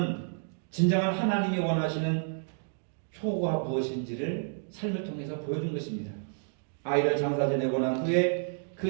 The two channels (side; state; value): left; silent; digital silence